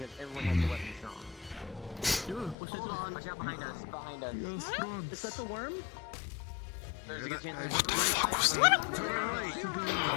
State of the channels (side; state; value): right; drops out; at 2.6 s